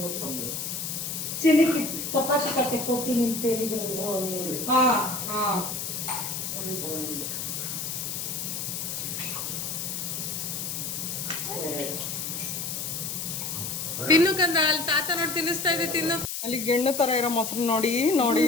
ಚಿನಿಕಿ ಚಪಾತಿ ಕಟ್ಟಕ್ಕೆ ಹೋಗ್ತೀನಿ ಅಂತ ಹೇಳಿದ್ರು. ತಿನ್ನು ಕಂದ ಅಲ್ಲಿ ತಾತ ನೋಡಿ ತಿನ್ನಿಸ್ತಾ ಇದೆ ತಿನ್ನು. ಅಲ್ಲಿ ಗೆಣ್ಣು ತರ ಇರೋ ಮೊಸರು ನೋಡಿ ನೋಡಿ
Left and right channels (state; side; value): noise; left; hiss, 4 dB below the sound